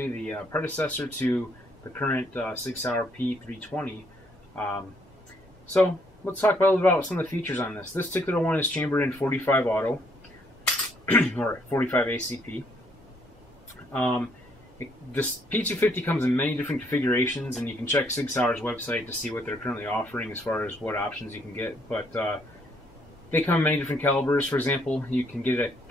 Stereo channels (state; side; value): normal; both; correlation 0.69